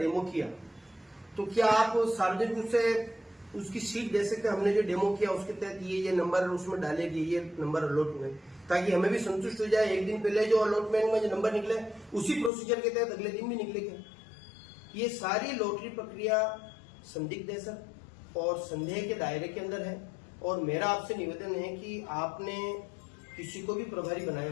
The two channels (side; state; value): right; drops out; at 12.5 s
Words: किया, तो क्या आप सार्वजनिक रूप से उसकी शीट दे सकते हैं? हमने जो डेमो किया उसके तहत ये नंबर उसमें डालेगी, ये नंबर अलॉट हुए, ताकि हमें भी संतुष्ट हो जाए। एक दिन पहले जो अलॉटमेंट में जो नंबर निकले उसी प्रोसीजर के तहत अगले दिन भी निकलेगा। ये सारी लॉटरी प्रक्रिया संदिग्ध है सर, और संदेह के दायरे के अंदर है। और मेरा आपसे निवेदन है कि आपने किसी को भी प्रभारी